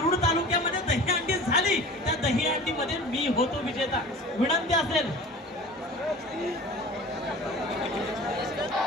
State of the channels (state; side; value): normal; both; correlation 0.39